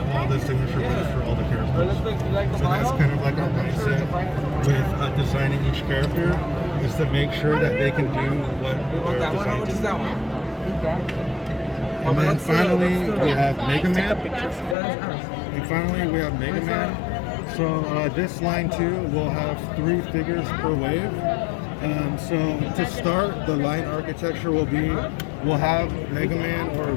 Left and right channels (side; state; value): right; drops out; at 14.8 s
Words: all the signature moves for all the characters. So that's kind of like our mindset with designing each character, is to make sure that they can do what they're designed to do. And then finally we have Mega Man. So this line too will have 3 figures per wave. So to start, the line architecture will have Mega Man or a